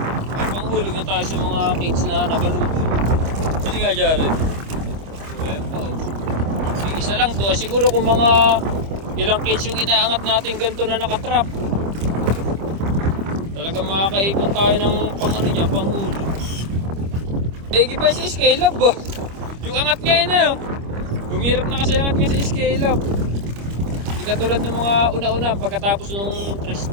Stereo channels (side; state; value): left; late; 25 ms